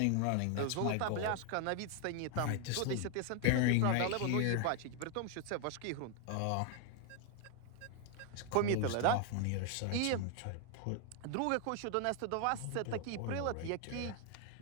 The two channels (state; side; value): different; both; correlation 0.01